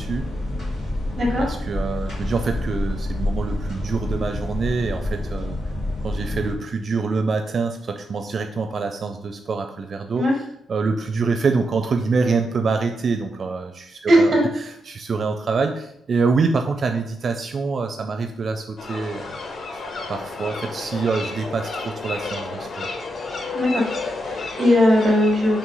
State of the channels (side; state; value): both; normal; correlation 0.85